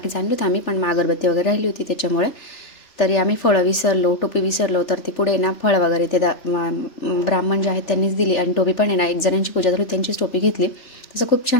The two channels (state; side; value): late; right; 3.4 ms